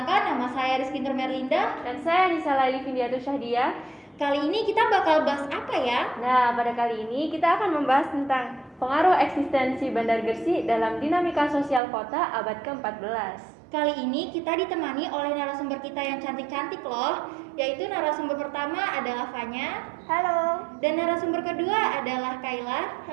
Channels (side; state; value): left; drops out; at 11.8 s